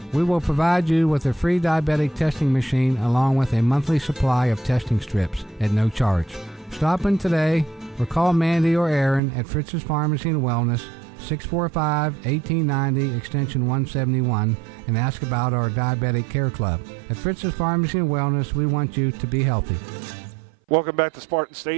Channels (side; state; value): left; drops out; at 9.2 s